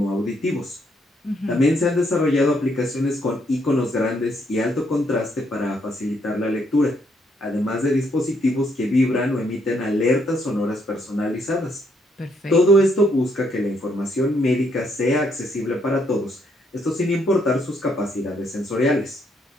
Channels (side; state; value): both; normal; correlation 0.73